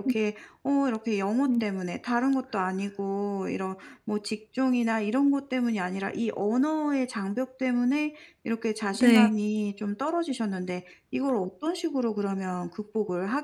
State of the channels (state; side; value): identical; both; correlation 1.00